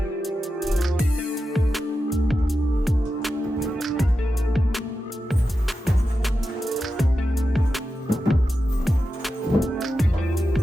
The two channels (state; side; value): normal; both; correlation 0.91